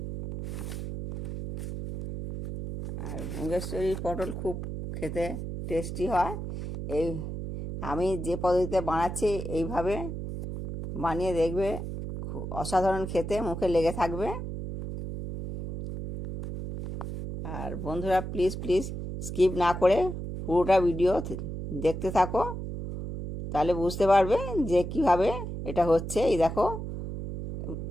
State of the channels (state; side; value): noise; right; hum, 6 dB below the sound